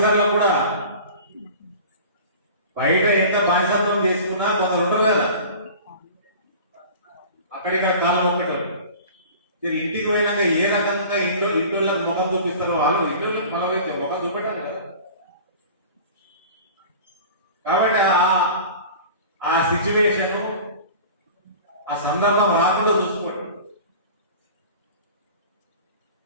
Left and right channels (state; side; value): inverted; both; correlation -0.40